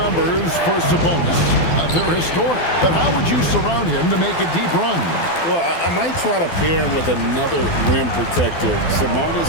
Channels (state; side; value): late; right; 12 ms